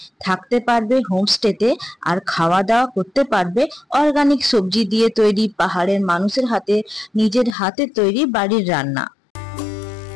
থাকতে পারবে হোমস্টেতে, আর খাওয়া দাওয়া করতে পারবে অর্গানিক সবজি দিয়ে তৈরি, পাহাড়ের মানুষের হাতে নিজের হাতে তৈরি বাড়ির রান্না।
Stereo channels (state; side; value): drops out; right; at 7.6 s